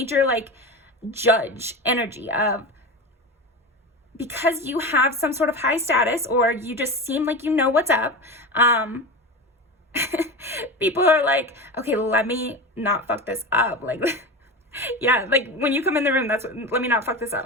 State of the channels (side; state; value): both; normal; correlation 0.25